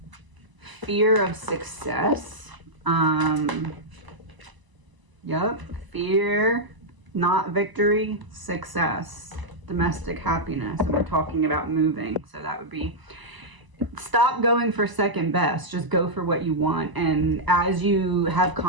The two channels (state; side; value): late; left; 1.0 ms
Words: fear of success. Fear, not victory, success, domestic happiness, and we're talking about moving. So that would be, stop going for second best, just go for what you want. And as you have